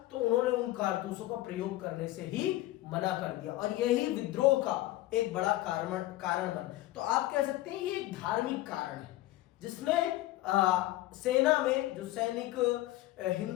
तो उन्होंने उन कारतूसों का प्रयोग करने से ही मना कर दिया और यही विद्रोह का एक बड़ा कारण बना। तो आप कह सकते हैं ये एक धार्मिक कारण है जिसने सेना में जो सैनिक,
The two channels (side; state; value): right; quieter; 16.6 dB